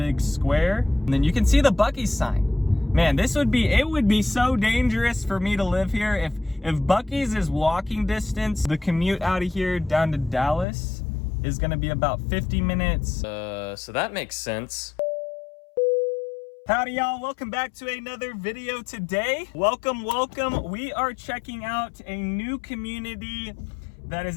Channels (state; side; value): drops out; right; at 10.7 s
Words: square. And then you can see the Buc-ee's sign. Man, it would be so dangerous for me to live here if Buc-ee's is walking distance. The commute out of here down to Dallas is gonna be about 50 minutes. So that makes sense. Howdy y'all, welcome back to another video today. Welcome. We are checking out a new community that is